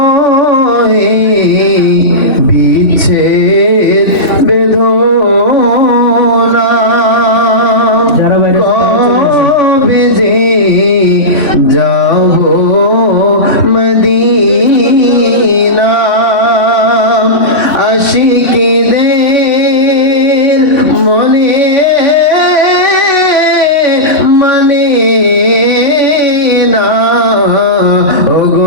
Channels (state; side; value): late; right; 3.1 ms